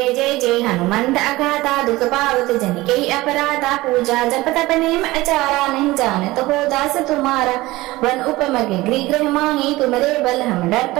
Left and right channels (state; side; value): quieter; left; 19.3 dB